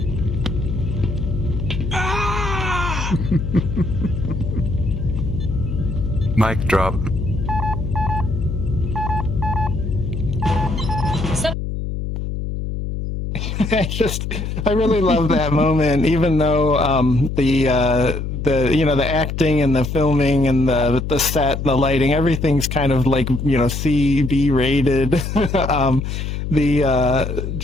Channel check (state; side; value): noise; left; hum, 4 dB below the sound